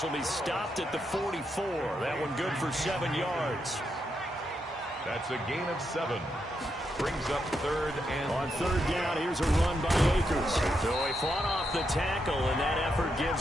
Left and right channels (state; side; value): normal; both; correlation 0.82